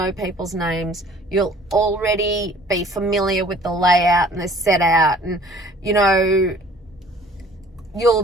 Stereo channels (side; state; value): both; normal; correlation 0.52